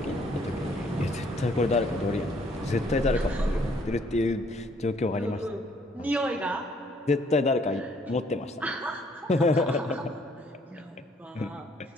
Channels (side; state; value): both; normal; correlation 0.64